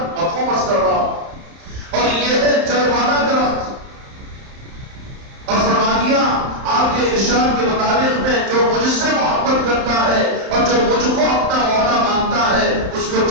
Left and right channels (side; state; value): left; late; 31 ms